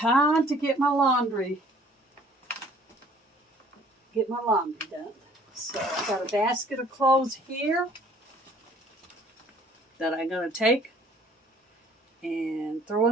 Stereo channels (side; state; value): both; normal; correlation 0.56